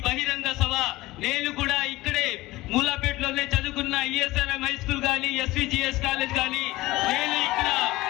బహిరంగ సభ. నేను కూడా ఇక్కడే మూలాపేటలోనే చదువుకున్న ఈఎస్ఆర్ఎం హై స్కూల్ కానీ ఎస్విజిఎస్ కాలేజ్ కానీ నేను ఇక్కడ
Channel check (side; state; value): right; quieter; 18.8 dB